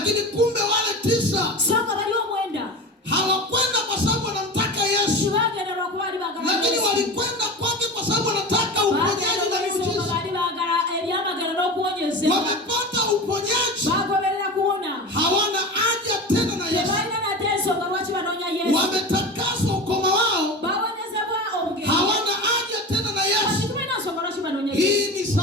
kumbe wale 9 songa bali omwenda hawakwenda kwa sababu wanamtaka Yesu. Bagenda lwakuba bali baagala Yesu. Lakini walikwenda kwake kwa sababu wanataka uponyaji na miujiza. Bali baagala ebyamagero n'okuwonyezebwa. Wamepata uponyaji. Bagoberera kuwona. Hawana haja tena na Yesu. Tebalina nate ensonga lwaki banoonya Yesu. Wametakaswa ukoma wao. Bawonyezebwa obugezi. Hawana haja tena na Yesu. Tulina nsonga lwaki banoonya Yesu. Hii ni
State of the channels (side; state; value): both; normal; correlation 0.29